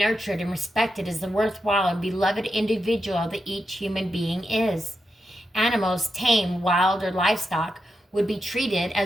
and respected as the worthwhile and beloved individual that each human being is. Animals, tame, wild, or livestock, would be treated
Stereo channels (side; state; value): both; normal; correlation 0.87